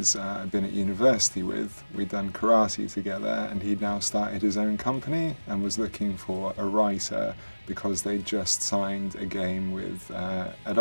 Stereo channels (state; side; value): inverted; both; correlation -1.00